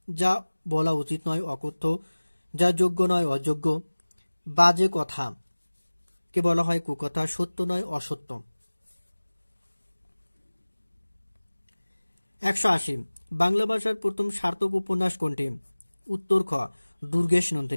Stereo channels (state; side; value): inverted; both; correlation -1.00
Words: যা বলা উচিত নয় অকথ্য, যা যোগ্য নয় অযোগ্য। বাজে কথা কে বলা হয় কুকথা, সত্য নয় অসত্য। 180 বাংলা ভাষার প্রথম সার্থক উপন্যাস কোনটি? উত্তর খ দুর্গেশ